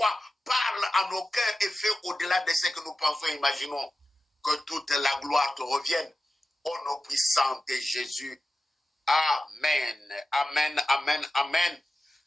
parle à nos cœurs et fais au-delà de ce que nous pensons et imaginons. Que toute la gloire te revienne. Au nom puissant de Jésus. Amen. Amen, amen, amen.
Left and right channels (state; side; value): normal; both; correlation 0.93